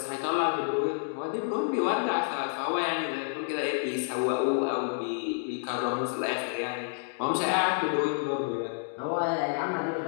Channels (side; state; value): right; silent; 58 dB below the other